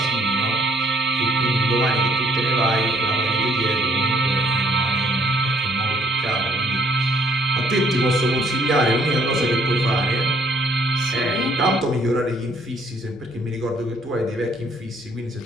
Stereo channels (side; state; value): both; normal; correlation 0.65